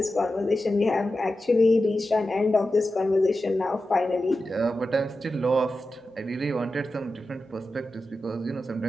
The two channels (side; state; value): both; normal; correlation 0.92